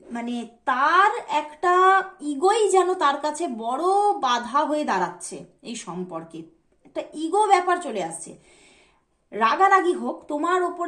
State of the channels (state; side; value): identical; both; correlation 1.00